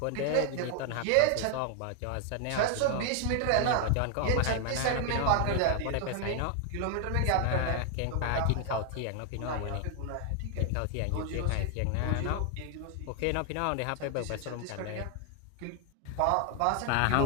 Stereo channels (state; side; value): different; both; correlation 0.00